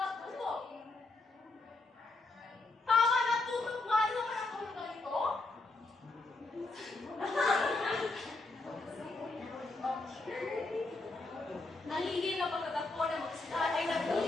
Tama, natutok nga. Ano naman ang tulog na ito? Nalilin na pagkatagpo ng magkasintahan ay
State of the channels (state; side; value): quieter; right; 3.2 dB